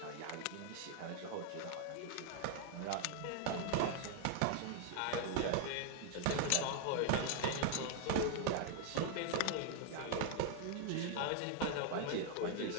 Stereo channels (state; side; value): different; both; correlation 0.00